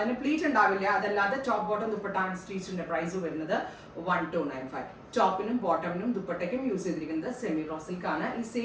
പ്ലീറ്റ് ഉണ്ടാവില്ല. അതല്ലാതെ ടോപ്പ് ബോട്ടം ദുപ്പട്ട അൺസ്റ്റിച്ചിന്റെ പ്രൈസ് വരുന്നത് 1295. ടോപ്പിനും ബോട്ടമിനും ദുപ്പട്ടയ്ക്കും യൂസ് ചെയ്തിരിക്കുന്നത് സെമി റോ സിൽക്ക് ആണ്. ഈ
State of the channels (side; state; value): both; identical; correlation 1.00